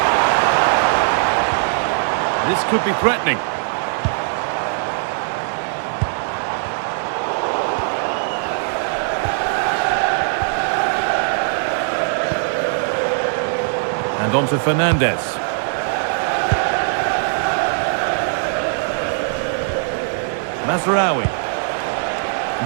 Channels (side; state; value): left; silent; digital silence